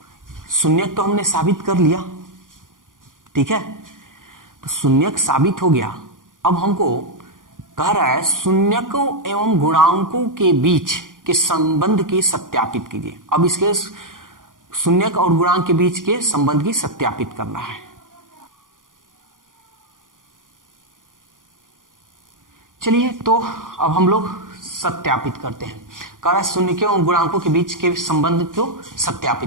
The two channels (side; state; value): left; late; 0.89 ms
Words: शून्यक तो हमने साबित कर लिया। ठीक है, तो शून्यक साबित हो गया। अब हमको कह रहा है शून्यकों एवं गुणांकों के बीच के संबंध की सत्यापित कीजिए। अब इसके शून्यक और गुणांक के बीच के संबंध की सत्यापित करना है। चलिए तो अब हम लोग सत्यापित करते हैं। कह रहा है शून्यकों और गुणांकों के बीच के संबंध को